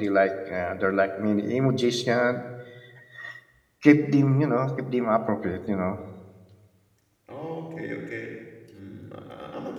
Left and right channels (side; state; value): both; identical; correlation 1.00